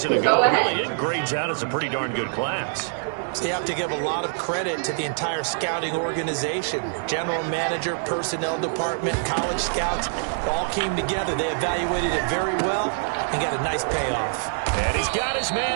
ago. Really, it grades out as a pretty darn good class. So you have to give a lot of credit to the entire scouting organization. General manager, personnel department, college scouts all came together. They evaluated it very well and got a nice payoff. And he's got his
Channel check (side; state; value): left; silent; 62 dB below the other